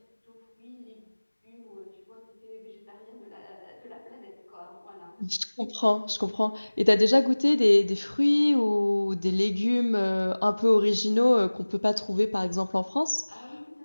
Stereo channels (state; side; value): inverted; both; correlation -1.00